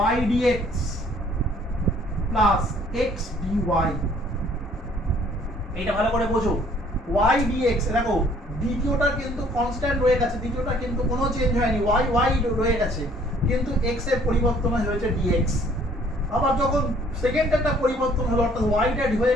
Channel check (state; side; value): normal; both; correlation 0.59